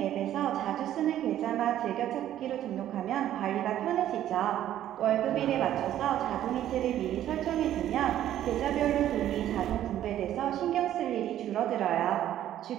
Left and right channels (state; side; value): quieter; left; 12.0 dB